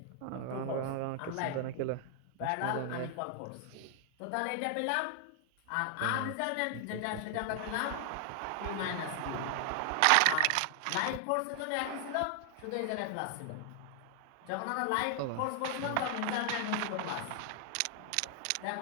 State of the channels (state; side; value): different; both; correlation 0.00